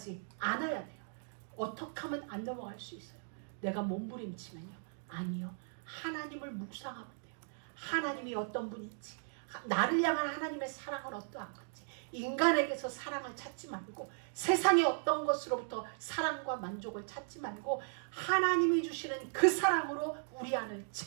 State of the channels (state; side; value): silent; left; digital silence